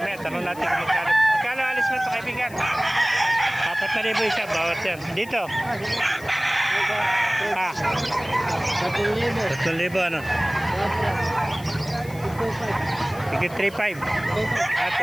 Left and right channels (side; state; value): left; noise; hiss, 20 dB below the sound